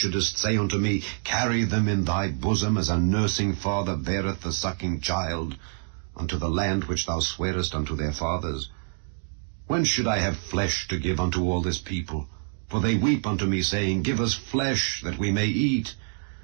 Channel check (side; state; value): left; silent; 61 dB below the other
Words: say unto me, Carry them in thy bosom, as a nursing father beareth the sucking child, unto the land which thou swarest unto their fathers? When should I have flesh to give unto all this people? For they weep unto me, saying, Give us flesh, that we may eat.